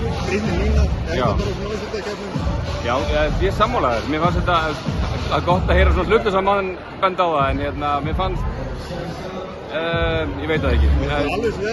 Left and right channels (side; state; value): both; identical; correlation 1.00